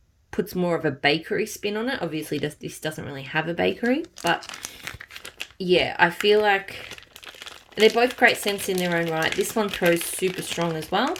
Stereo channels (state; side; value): identical; both; correlation 1.00